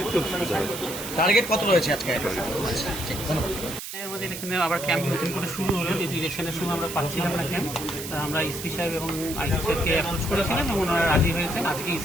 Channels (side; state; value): right; noise; hiss, 8 dB below the sound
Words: একটু সুবিধা হয়। টার্গেট কত রয়েছে আজকে? আমাদের এখানে আবার ক্যাম্প নতুন করে শুরু হলো, যেহেতু ইলেকশনের সময় আমরা পাচ্ছিলাম না ক্যাম্প, আমরা এসপি সাহেব এবং আইসি সাহেবকে অ্যাপ্রোচ করেছিলাম এবং ওনারা রাজি হয়েছেন। আজকে